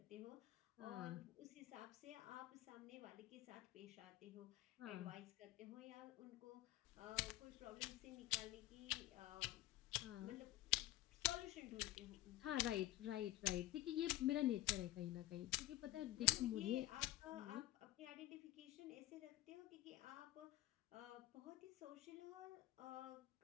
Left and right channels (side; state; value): right; quieter; 16.4 dB